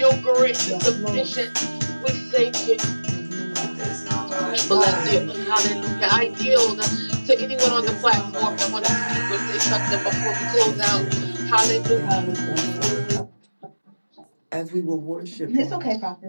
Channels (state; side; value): inverted; both; correlation -1.00